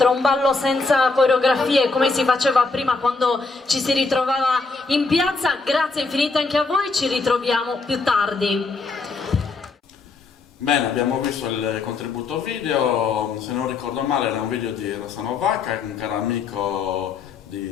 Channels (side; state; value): right; quieter; 4.0 dB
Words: un ballo senza coreografie come si faceva prima quando ci si ritrovava in piazza. Grazie infinite anche a voi, ci ritroviamo più tardi. Bene, abbiamo visto il contributo video, se non ricordo male era un video di Rossano Vacca, un caro amico